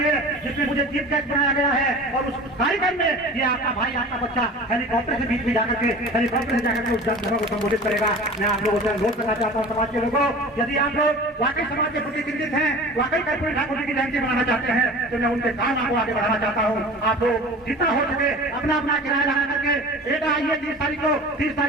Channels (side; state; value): both; normal; correlation 0.39